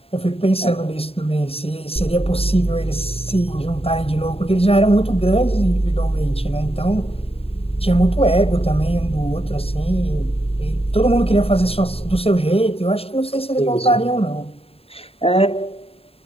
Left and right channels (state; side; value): late; right; 0.28 ms